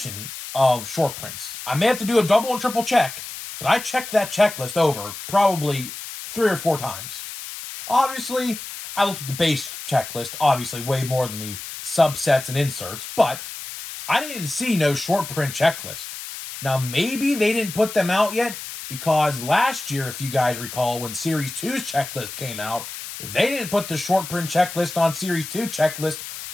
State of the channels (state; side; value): noise; left; hiss, 10 dB below the sound